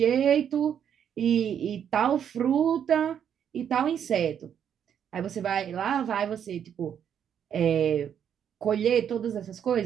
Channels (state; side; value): quieter; left; 8.7 dB